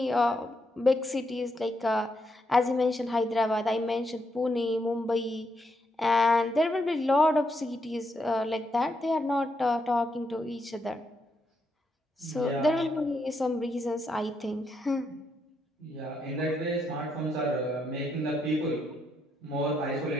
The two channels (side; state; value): both; normal; correlation 0.80